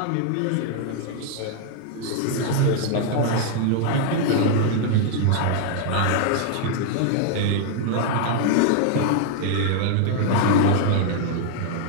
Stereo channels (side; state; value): both; different; correlation 0.00